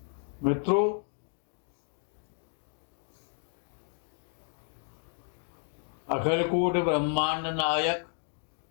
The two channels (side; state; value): right; silent; digital silence